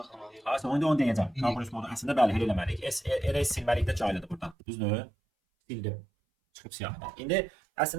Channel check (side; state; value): left; drops out; at 4.5 s